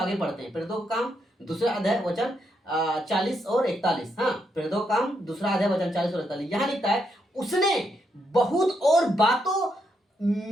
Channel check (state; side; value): normal; both; correlation 0.79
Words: बढ़ते हैं। प्रेरितों का काम दूसरा अध्याय वचन 40 और 41। हाँ, प्रेरितों का काम दूसरा अध्याय वचन 40 और 41। यहाँ लिखता है, उसने बहुत और बातों